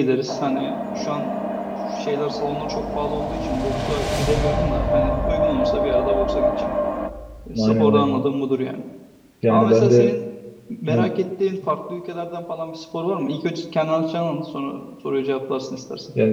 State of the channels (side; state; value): both; identical; correlation 1.00